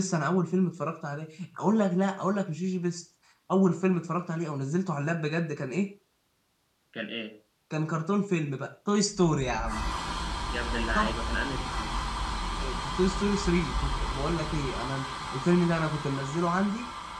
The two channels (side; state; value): both; identical; correlation 1.00